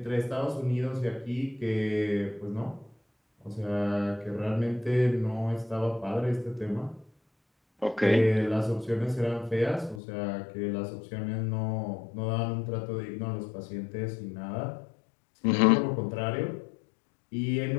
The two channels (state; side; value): drops out; right; at 10.0 s